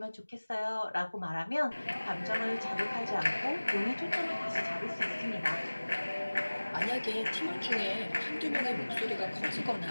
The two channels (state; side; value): inverted; both; correlation -1.00